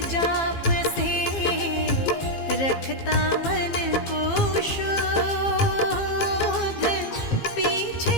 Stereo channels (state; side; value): late; right; 15 ms